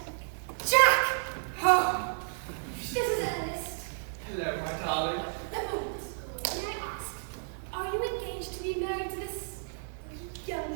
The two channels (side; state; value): left; silent; 57 dB below the other